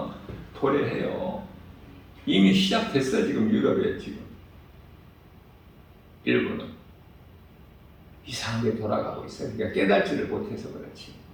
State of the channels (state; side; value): identical; both; correlation 1.00